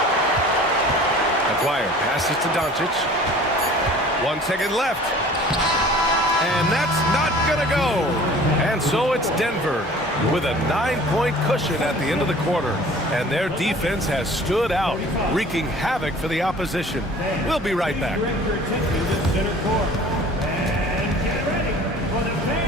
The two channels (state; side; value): normal; both; correlation 0.47